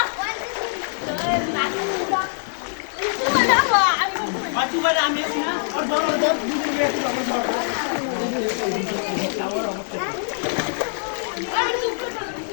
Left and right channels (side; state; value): right; silent; digital silence